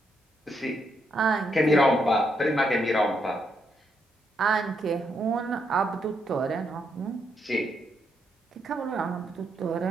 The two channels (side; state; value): both; normal; correlation 0.78